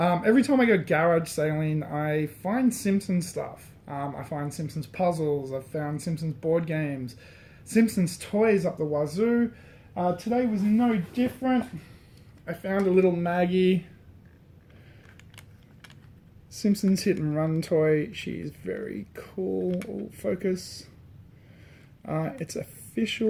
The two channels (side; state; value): both; identical; correlation 1.00